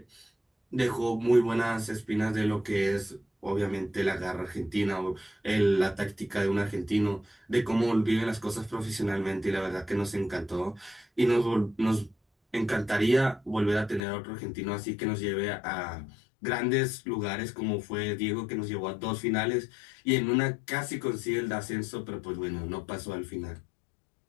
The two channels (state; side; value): drops out; right; at 14.0 s